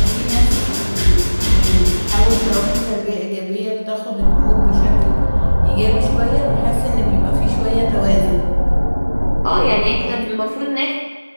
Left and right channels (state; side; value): inverted; both; correlation -1.00